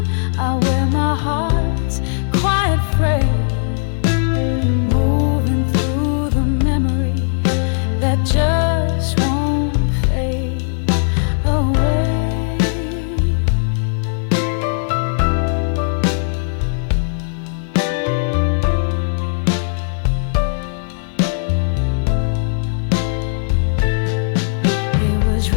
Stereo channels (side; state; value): right; silent; digital silence